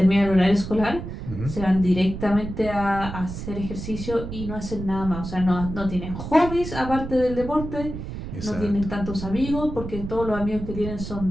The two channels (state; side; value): noise; right; rumble, 8 dB below the sound